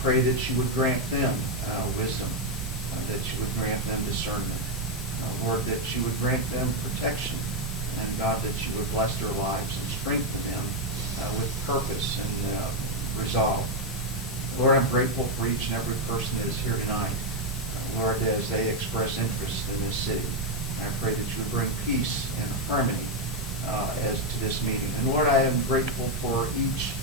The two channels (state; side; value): normal; both; correlation 0.02